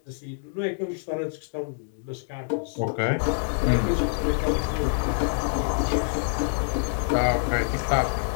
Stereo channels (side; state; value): right; silent; digital silence